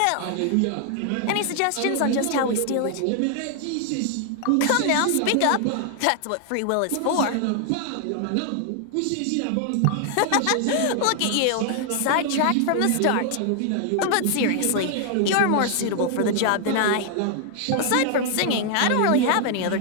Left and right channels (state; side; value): different; both; correlation 0.00